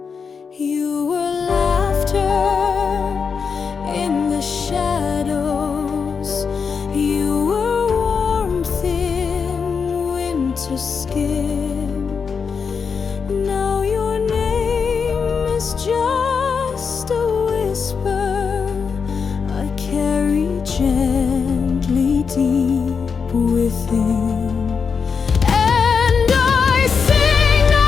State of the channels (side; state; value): right; quieter; 5.8 dB